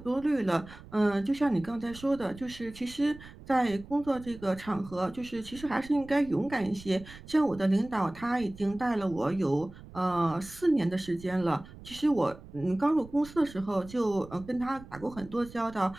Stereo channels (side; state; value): right; noise; rumble, 18 dB below the sound